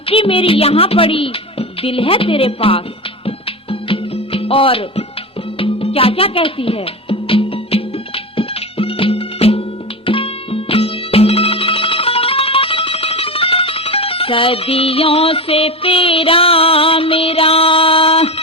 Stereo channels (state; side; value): normal; both; correlation 0.22